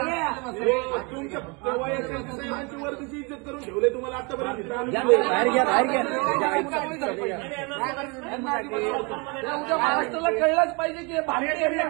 वर्दीची इज्जत करून ठेवले तुम्हाला आतापर्यंत. महाराष्ट्राला कळलंच पाहिजे की भारतीय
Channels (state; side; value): quieter; left; 30.4 dB